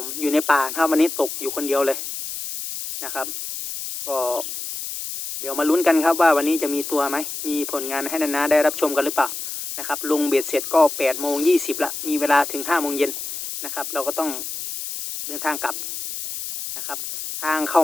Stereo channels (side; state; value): left; noise; hiss, 7 dB below the sound